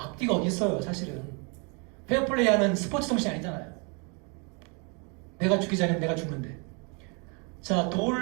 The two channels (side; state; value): left; quieter; 34.0 dB